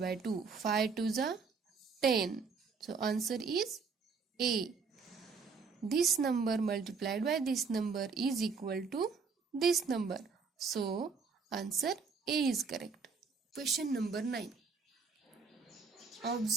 by 2. 5 to the 10. So answer is A. This number multiplied by this number is equal to this number. So answer A is correct. Question number 9.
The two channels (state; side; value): quieter; left; 5.1 dB